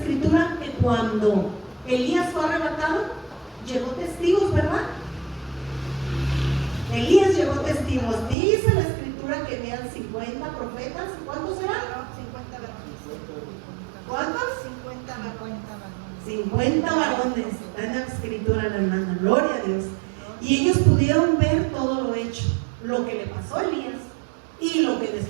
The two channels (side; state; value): left; drops out; at 8.3 s